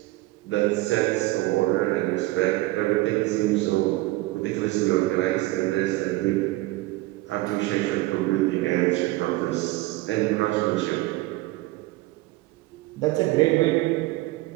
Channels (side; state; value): left; quieter; 19.5 dB